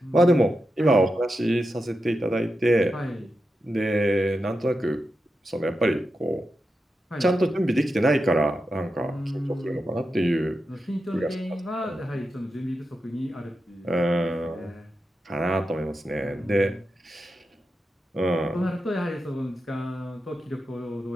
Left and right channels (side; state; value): both; normal; correlation 0.89